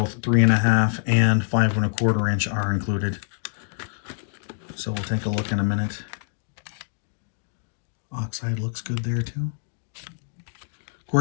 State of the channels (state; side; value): silent; right; digital silence